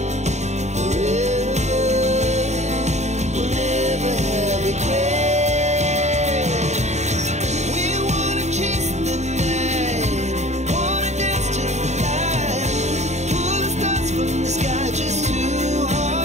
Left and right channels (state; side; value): late; left; 0.33 ms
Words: forever. We'll never have regrets.